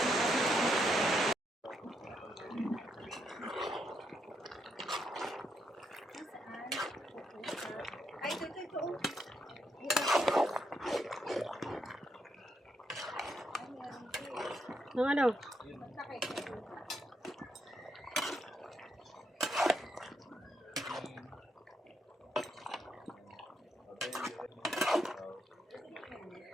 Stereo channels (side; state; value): both; normal; correlation 0.78